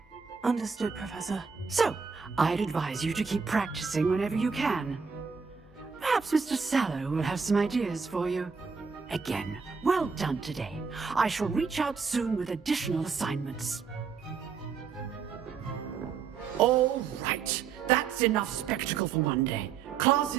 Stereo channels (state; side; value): quieter; left; 5.8 dB